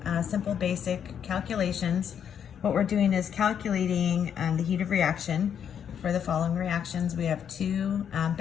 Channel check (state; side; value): quieter; right; 8.4 dB